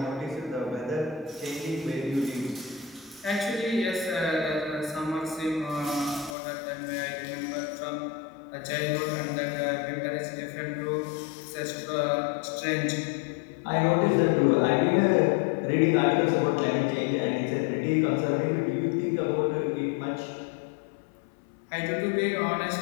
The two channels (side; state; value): right; drops out; at 6.4 s